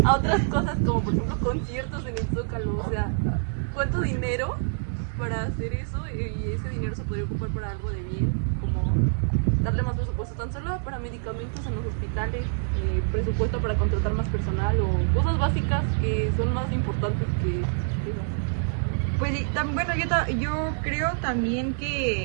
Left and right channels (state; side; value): silent; left; digital silence